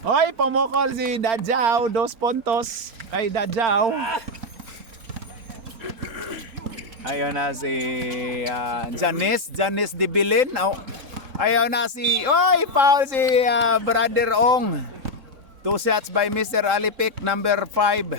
Hoy, pumukol si Dadjaw. 2 puntos kay Dadjaw. Ayun na si Janice Dibilin. Ayun na si... Oy, foul si Brother Ong. 2 shots by Mr. Alipik, number 5.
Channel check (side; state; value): left; late; 3.8 ms